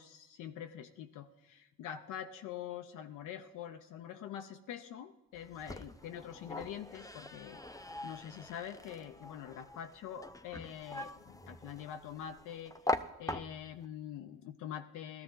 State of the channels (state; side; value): quieter; right; 4.5 dB